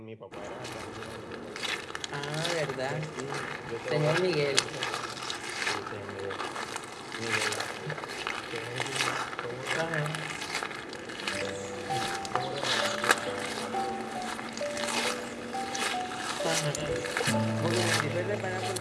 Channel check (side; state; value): both; identical; correlation 1.00